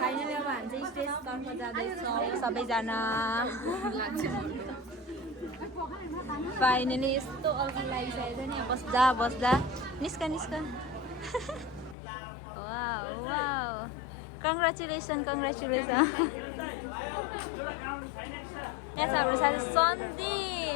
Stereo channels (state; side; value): drops out; right; at 12.0 s